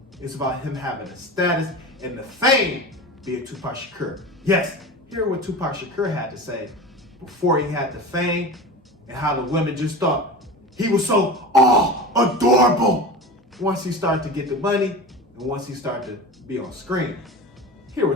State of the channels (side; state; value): both; normal; correlation 0.30